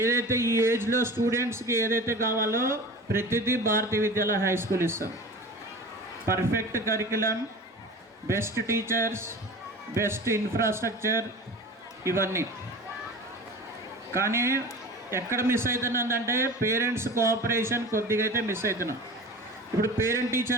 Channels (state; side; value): normal; both; correlation 0.36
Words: ఈ ఏజ్లో స్టూడెంట్స్కి ఏదైతే కావాలో ప్రతిదీ భారతీయ విద్యాలయ హై స్కూల్ ఇస్తాం. Perfect curriculum, best teachers, best infrastructure, ఇవన్నీ. కానీ ఎక్కడ మిస్ అవుతున్నదంటే పేరెంట్స్ కోఆపరేషన్ కొద్దిగా అయితే మిస్ అవుతున్నాం. ఇప్పుడు పేరెంట్